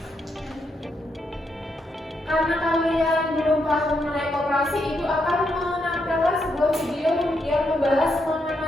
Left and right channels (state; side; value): normal; both; correlation 0.80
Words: Karena kalian belum paham mengenai koperasi, Ibu akan menampilkan sebuah video yang membahas